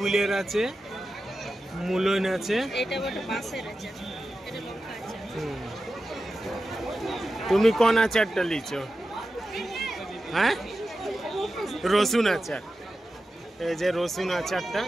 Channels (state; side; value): normal; both; correlation 0.92